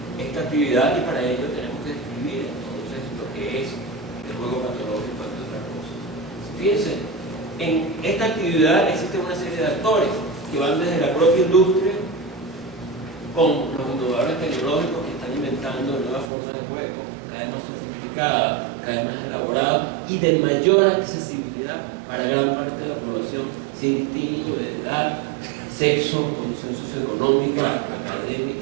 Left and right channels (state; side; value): drops out; left; at 16.3 s